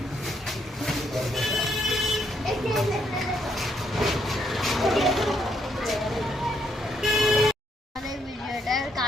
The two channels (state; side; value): normal; both; correlation 0.74